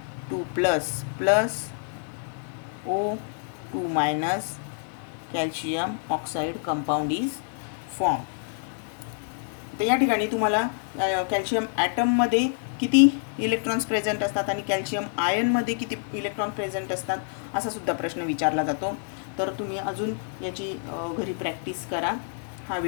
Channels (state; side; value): silent; right; 60 dB below the other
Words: 2 plus plus O2 minus calcium oxide compound is form. तर या ठिकाणी तुम्हाला कॅल्शियम ॲटममध्ये किती इलेक्ट्रॉन्स प्रेझेंट असतात आणि कॅल्शियम आयनमध्ये किती इलेक्ट्रॉन प्रेझेंट असतात असा सुद्धा प्रश्न विचारला जातो. तर तुम्ही अजून याची घरी प्रॅक्टिस करा. हा